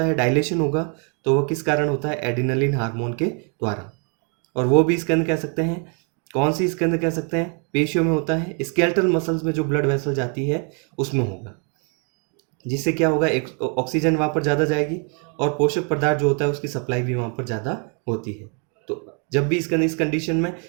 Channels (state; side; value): quieter; left; 38.2 dB